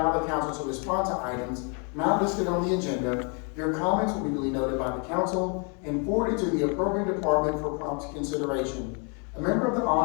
the council to respond to items not listed on the agenda, your comments will be duly noted by the council and forwarded to the appropriate department for prompt consideration. A member of the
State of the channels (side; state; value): right; quieter; 36.6 dB